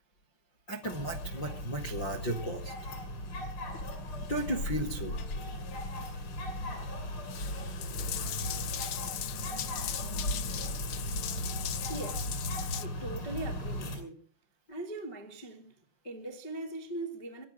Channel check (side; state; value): right; late; 6.3 ms